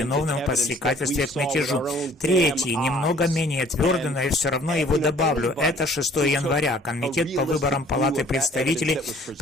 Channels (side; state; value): both; normal; correlation 0.55